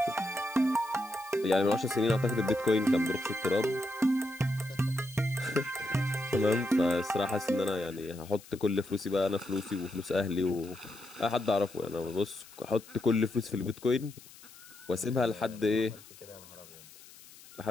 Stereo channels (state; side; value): noise; left; hiss, 20 dB below the sound